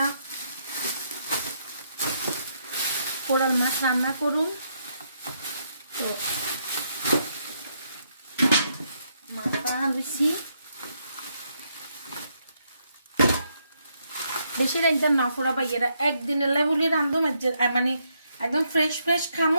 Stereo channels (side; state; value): both; inverted; correlation -0.76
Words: কোরাল মাছ রান্না করুন। তো মাথা বেশি বেশি একদম না ফোড়া ভাইয়েরা একদিনের লেবুলি রান্ধো মানে একদম ফ্রেশ ফ্রেশ